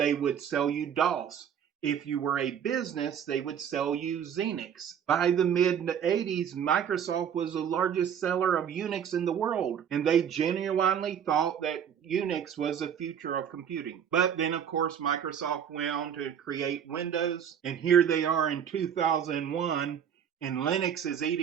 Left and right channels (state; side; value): quieter; left; 8.5 dB